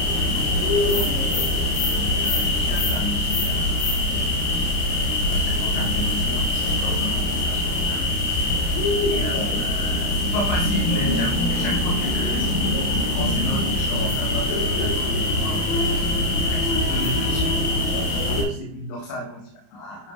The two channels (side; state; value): right; late; 30 ms